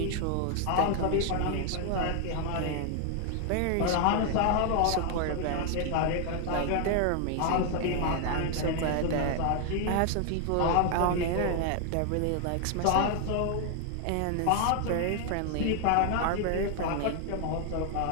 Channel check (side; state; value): both; different; correlation 0.00